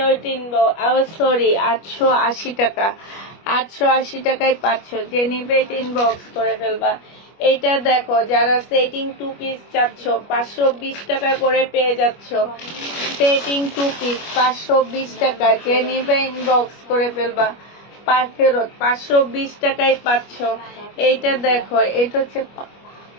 সরি 880 টাকা। 880 টাকায় পাচ্ছ। যে নিবে ইনবক্স করে ফেলবা। এইটা দেখো, যারা সেটিং 2 পিস চাচ্ছ 520 টাকা করে পেয়ে যাচ্ছ। সেটিং 2 পিস 520 টাকা। যে নিবে ইনবক্স করে ফেলবা। ফেরত 520 টাকায় পাচ্ছ। এইটা দেখো, এটা হচ্ছে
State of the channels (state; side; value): late; right; 25 ms